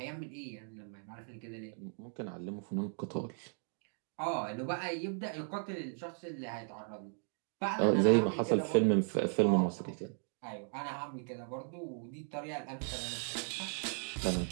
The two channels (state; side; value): silent; left; 53 dB below the other